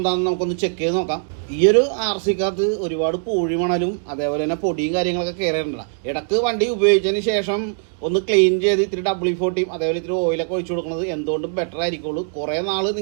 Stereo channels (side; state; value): left; silent; digital silence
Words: നമുക്കൊന്ന് ചെക്ക് ചെയ്ത് നോക്കാം. ഈ ഒരു RCക്കകത്ത് ഒരുപാട് പൂഴി മണലും അതേപോലെ തന്നെ പൊടിയും കാര്യങ്ങളൊക്കെ കയറിയിട്ടുണ്ട്. ഇടക്ക് വണ്ടി ഉപയോഗിച്ചതിന് ശേഷം ഒന്ന് ക്ലീൻ ചെയ്ത് ഇത്തിരി W40 അതേപോലെ ഇത്തിരി ഓയിലൊക്കെ ഒഴിച്ചു കൊടുക്കുന്നത് എന്തുകൊണ്ടും ബെറ്റർ ആയിരിക്കുള്ളൂ. കുറേ നാൾ